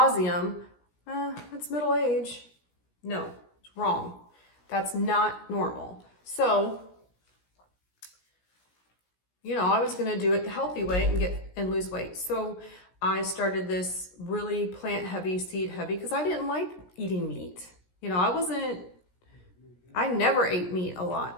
that's middle age. No. Wrong. That's not normal. So, I was going to do it the healthy way and lose weight. So I started this really plant heavy, seed heavy, because I didn't like eating meat. I never ate meat a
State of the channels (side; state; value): right; late; 17 ms